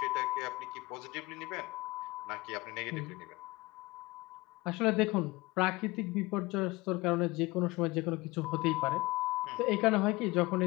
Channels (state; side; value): quieter; right; 21.8 dB